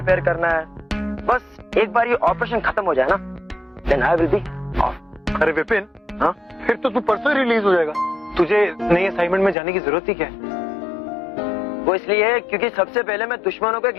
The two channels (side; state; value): right; drops out; at 9.6 s